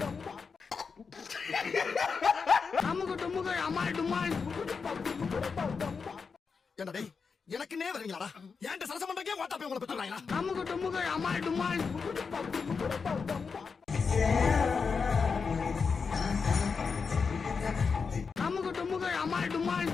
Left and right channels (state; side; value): quieter; right; 5.3 dB